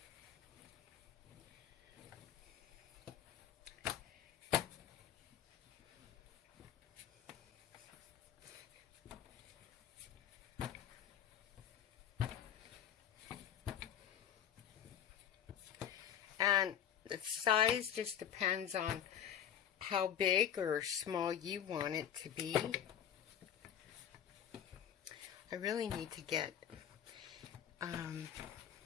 And the size just depends on how big or small you want it to be. I really need to get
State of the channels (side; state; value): right; quieter; 9.7 dB